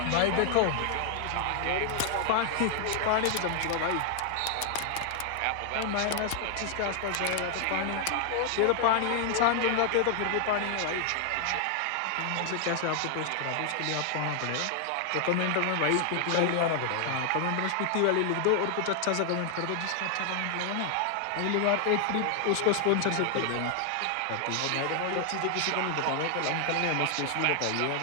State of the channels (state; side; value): different; both; correlation 0.00